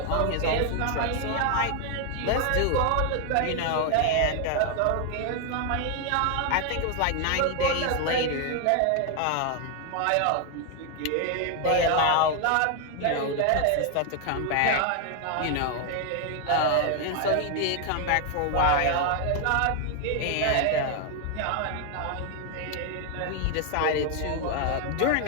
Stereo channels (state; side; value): different; both; correlation 0.00